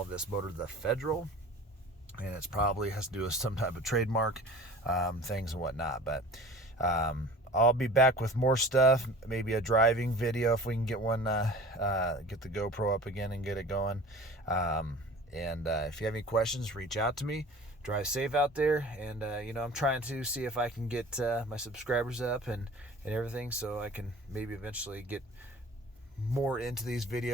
this motor the Federal, and it's probably has to do with some type of trademark things and whatnot. But I'll be back with more stuff, maybe a driving video if we can get one, get the GoPro up again and get it going. And if you have any questions, reach out to me. Drive safe out there, and you know, I'm trying to see if I can get my subscribers up and everything, so I can maybe eventually get more into these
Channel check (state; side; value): normal; both; correlation 0.42